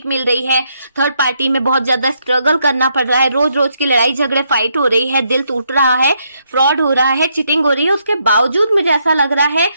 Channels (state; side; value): inverted; both; correlation -0.76